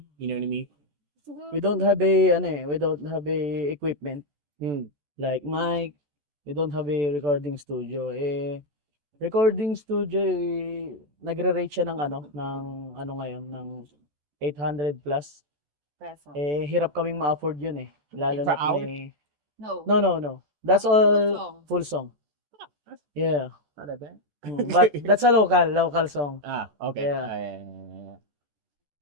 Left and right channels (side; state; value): left; late; 14 ms